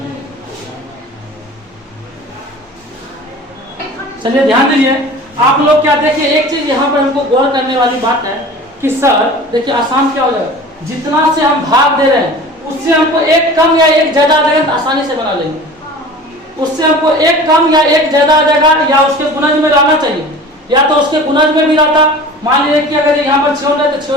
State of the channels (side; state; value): both; normal; correlation 0.39